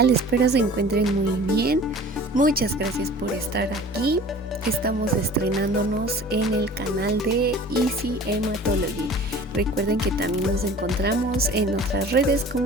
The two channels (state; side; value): normal; both; correlation 0.44